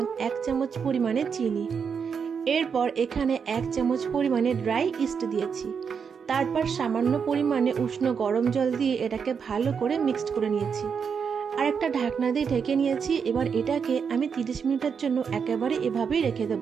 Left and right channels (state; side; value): quieter; left; 6.4 dB